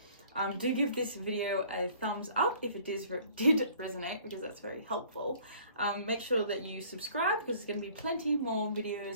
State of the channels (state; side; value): inverted; both; correlation -0.54